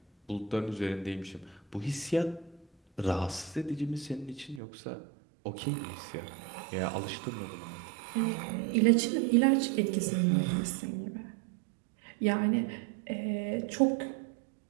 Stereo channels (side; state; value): left; drops out; at 4.6 s